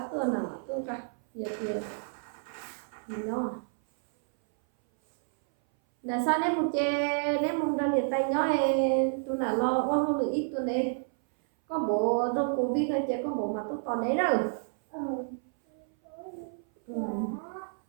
tuần nào mà tôi cả giờ thì mình đó là sao nếu một chê nếu một đơn nhiệt tay nhỏ tôi là lo quá không được ít tuần đấy có bộ trong covid thôi chứ có bộ mà tôi còn đấy rồi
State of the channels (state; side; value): silent; left; 58 dB below the other